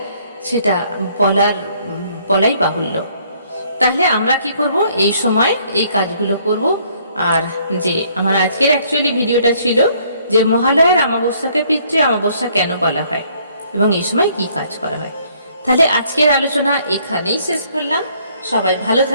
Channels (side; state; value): both; inverted; correlation -0.64